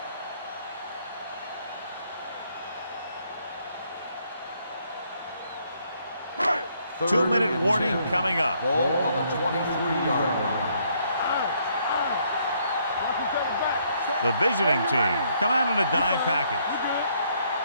Third 2-minute and warning 10. coming up. Ball on the 23-yard line. Watch each other back. The visiting team come out in a dime package. You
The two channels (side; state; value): both; inverted; correlation -0.69